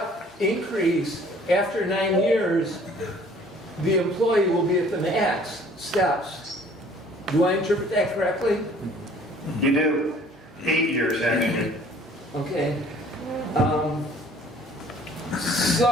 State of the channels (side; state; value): both; normal; correlation 0.54